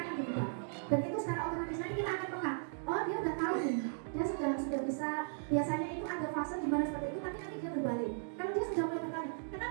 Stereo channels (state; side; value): silent; left; digital silence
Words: berubah. Dan itu secara otomatis nanti kita akan peka. Oh, dia udah tahu nih, dia sudah bisa. Biasanya itu ada fase di mana seperti itu, tapi nanti dia berbalik. Kalau dia sudah mulai bertanya,